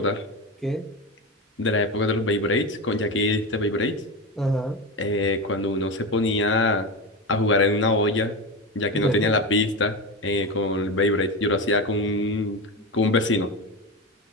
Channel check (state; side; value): normal; both; correlation 0.19